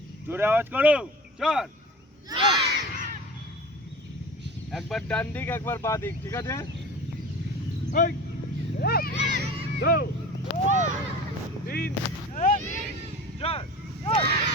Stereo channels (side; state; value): both; normal; correlation 0.36